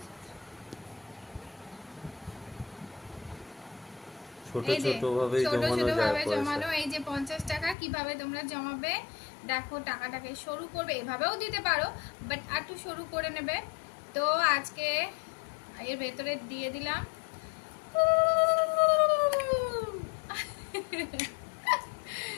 ছোট এই যে ছোট ভাবেই ছোট জমানো ছোট যায় ভাবে পয়সা। জমানো। এই যে 50 টাকা কিভাবে তোমরা জমাবে দেখো, টাকাটাকে সরু করবে, এভাবেও দিতে পারো, বাট একটু সরু করে নেবে। তো আজকে এর ভেতরে দিয়ে দিলাম।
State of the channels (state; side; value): drops out; right; at 7.8 s